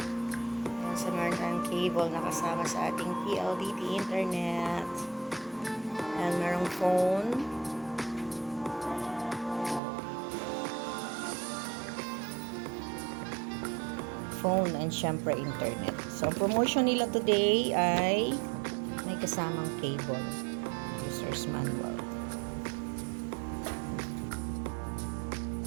Sa meron tayong cable na kasama sa ating PLDT internet. And merong phone. Phone and syempre internet. So, ang promotion nila today ay may kasamang cable. User's manual.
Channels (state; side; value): drops out; left; at 9.8 s